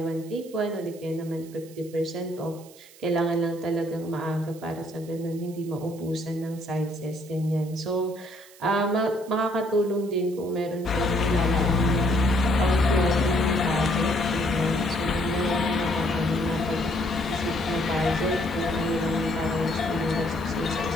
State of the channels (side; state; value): right; noise; hiss, 22 dB below the sound